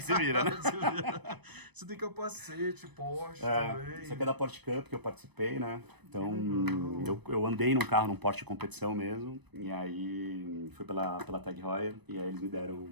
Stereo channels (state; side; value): late; left; 0.99 ms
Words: você vira, né? Você tem capacete, Porsche É, também. isso aqui é da Porsche Cup que eu participei, né? Então, eu andei num carro, num Porsche de competição mesmo. E aí, fui pela Tag Heuer. E aí eles me deram